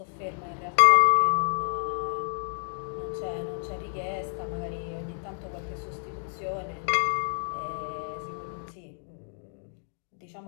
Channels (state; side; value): silent; right; digital silence